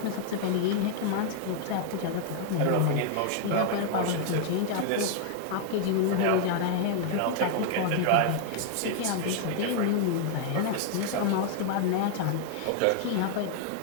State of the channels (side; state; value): both; different; correlation 0.00